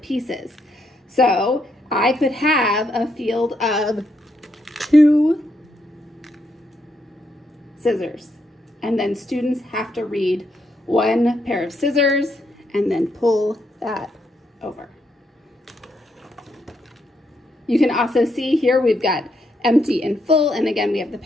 So I could have a field of 2 scissors, and then students have to read 1 pair of scissors and then pull that over. You can also see here we've got empty and full, and again we have the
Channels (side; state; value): both; normal; correlation 0.78